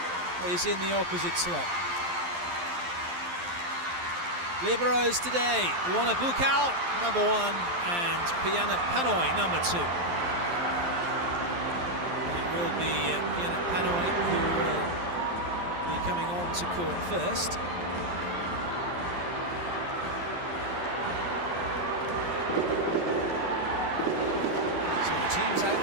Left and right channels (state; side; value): late; left; 11 ms